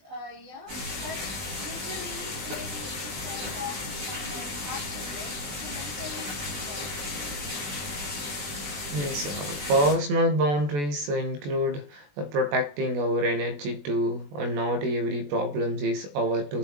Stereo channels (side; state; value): left; late; 21 ms